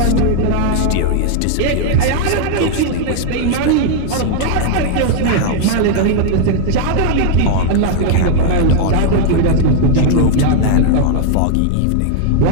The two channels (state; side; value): different; both; correlation 0.00